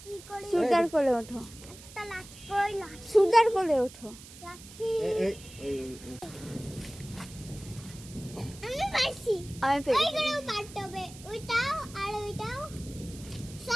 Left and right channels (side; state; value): right; noise; hiss, 18 dB below the sound